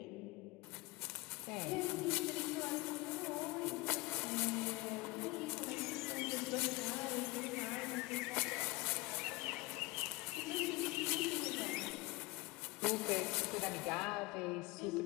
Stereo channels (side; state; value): right; quieter; 22.6 dB